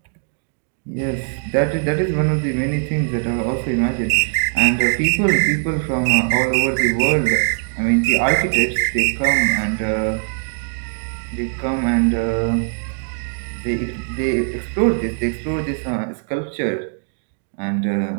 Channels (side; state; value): left; silent; 58 dB below the other